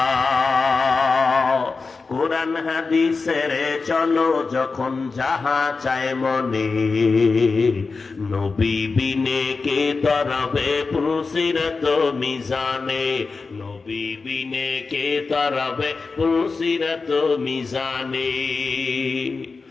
কোরআন হাদিসের চলো যখন যাহা চায় মনে, নবী বিনে কে তরবে পুলসিরত মিজানে, নবী বিনে কে তরবে পুলসিরত মিজানে।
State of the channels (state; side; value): quieter; right; 4.3 dB